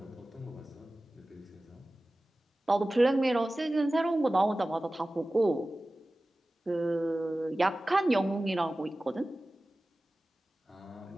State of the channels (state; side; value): normal; both; correlation 0.96